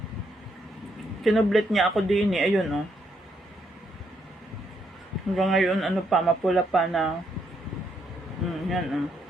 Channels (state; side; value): normal; both; correlation 0.75